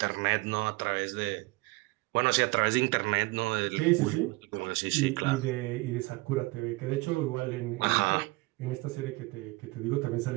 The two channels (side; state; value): left; quieter; 23.4 dB